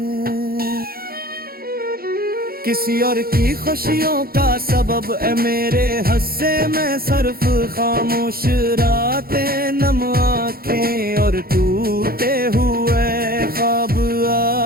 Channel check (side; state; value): left; late; 0.44 ms